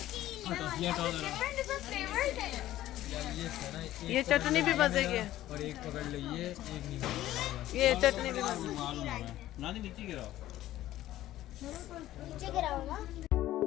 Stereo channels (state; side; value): quieter; right; 14.3 dB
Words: ये चटनी भी मज़े की है, और एक पकड़ लीजिए, एक नहीं पकड़ेगा। ये चटनी भी मज़े की है। मालूम है ना, नीचे गिराओ। नीचे गिरा होगा।